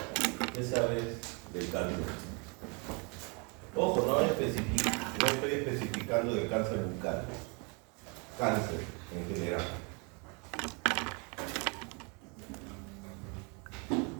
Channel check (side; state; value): left; quieter; 33.1 dB